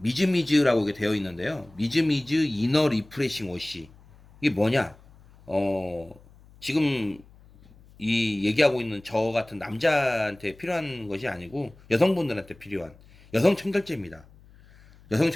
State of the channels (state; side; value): noise; left; hum, 25 dB below the sound